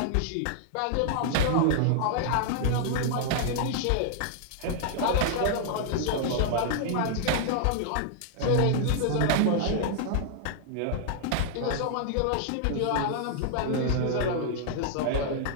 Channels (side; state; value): both; different; correlation -0.01